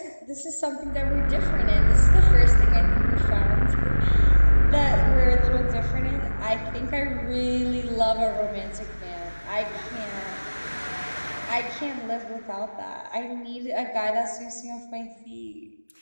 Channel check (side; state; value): both; inverted; correlation -1.00